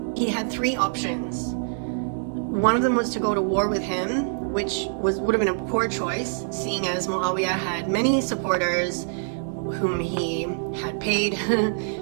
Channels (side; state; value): left; silent; digital silence